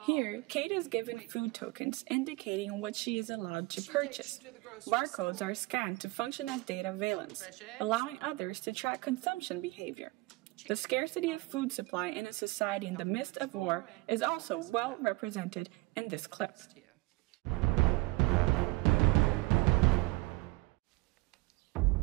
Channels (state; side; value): quieter; left; 23.1 dB